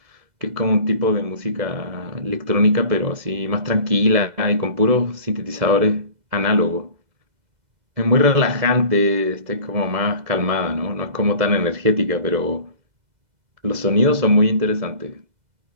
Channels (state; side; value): late; left; 2.0 ms